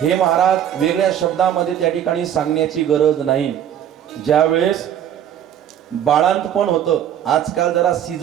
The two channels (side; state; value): left; quieter; 10.1 dB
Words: हे महाराज वेगळ्या शब्दामध्ये त्या ठिकाणी सांगण्याची गरज नाही. ज्या वेळेस बाळंतपण होतं, आजकाल जरा